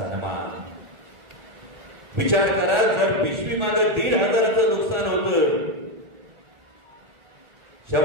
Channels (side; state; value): left; late; 1.4 ms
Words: विचार करा, जर पिशवी मागे 1,500चं नुकसान होतं,